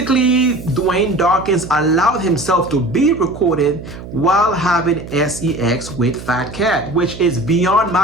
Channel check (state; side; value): noise; right; hum, 13 dB below the sound